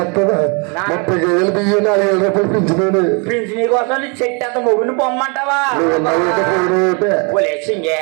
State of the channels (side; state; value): left; quieter; 33.6 dB